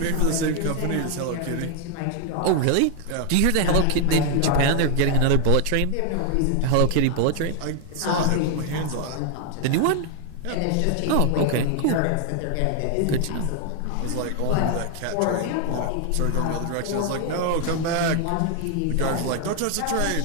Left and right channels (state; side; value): different; both; correlation 0.00